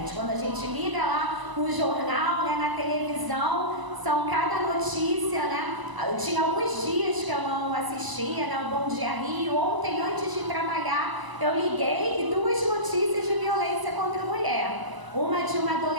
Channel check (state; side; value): late; left; 1.0 ms